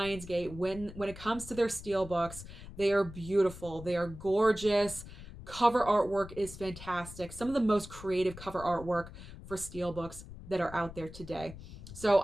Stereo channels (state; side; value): noise; left; rumble, 14 dB below the sound